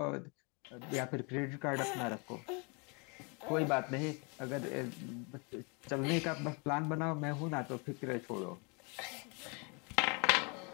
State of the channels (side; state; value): right; quieter; 32.9 dB